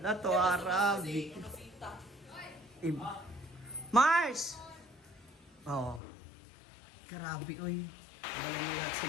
to, Arabic. Mars! Oh. Grabe, oy. Bala na lahat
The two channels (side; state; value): right; drops out; at 6.0 s